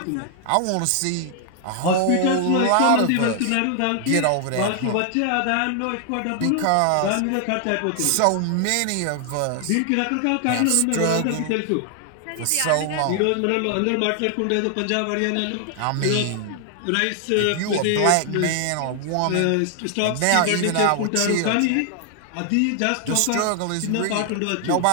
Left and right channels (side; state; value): both; different; correlation 0.00